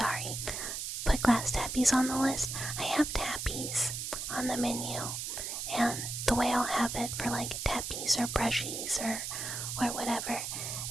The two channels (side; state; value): right; noise; hiss, 4 dB below the sound